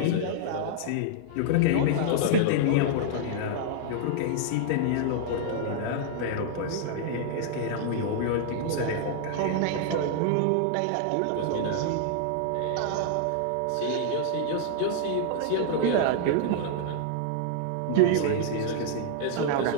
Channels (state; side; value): different; both; correlation -0.01